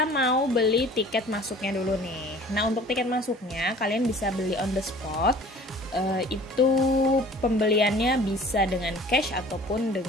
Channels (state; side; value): normal; both; correlation 0.47